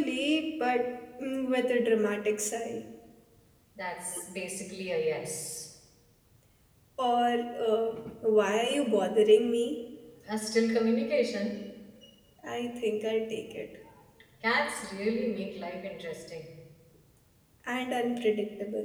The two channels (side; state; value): both; identical; correlation 1.00